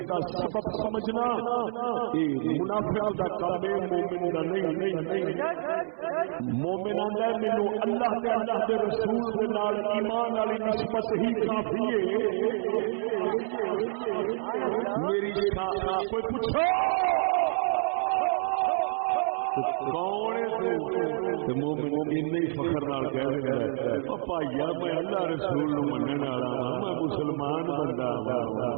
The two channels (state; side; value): silent; left; 59 dB below the other